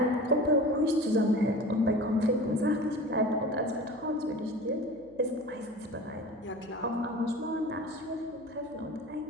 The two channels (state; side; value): noise; left; hum, 28 dB below the sound